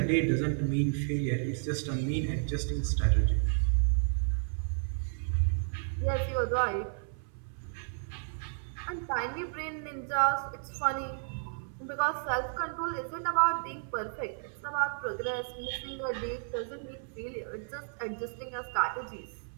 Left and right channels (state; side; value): silent; left; 56 dB below the other